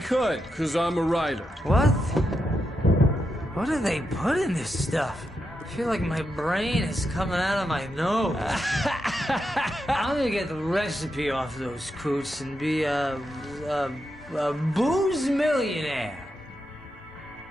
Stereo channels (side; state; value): both; normal; correlation 0.85